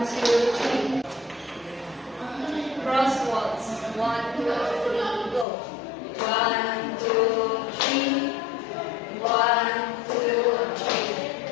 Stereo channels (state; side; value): drops out; right; at 5.5 s